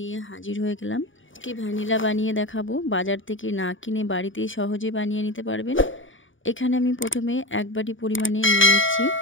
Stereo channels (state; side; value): late; right; 0.57 ms